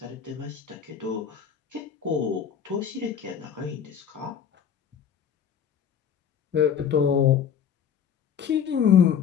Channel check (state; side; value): quieter; right; 8.1 dB